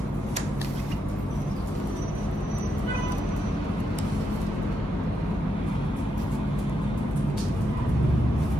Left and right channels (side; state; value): both; normal; correlation 0.82